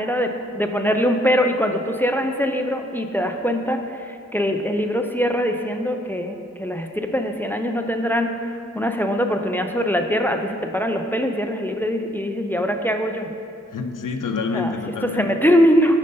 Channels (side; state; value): both; normal; correlation 0.68